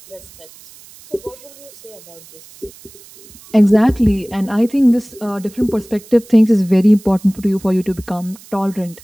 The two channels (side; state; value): right; noise; hiss, 22 dB below the sound